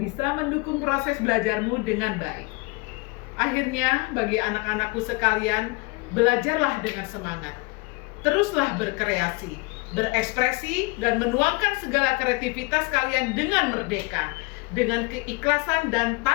mendukung proses belajarmu dengan baik. Akhirnya, bagi anak-anakku sekalian, belajarlah dengan semangat. Teruslah berkreasi, berekspresi, dan menuangkan segala kreativitas kalian dengan merdeka, dengan keikhlasan dan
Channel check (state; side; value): quieter; right; 26.8 dB